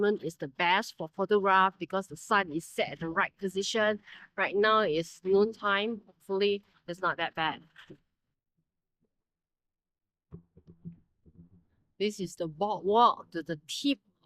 is the best for photograph because the sun is set at the right position. Right now it's noon time. Hopefully it's not that bad. This is the boardwalk to the tip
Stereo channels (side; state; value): both; identical; correlation 1.00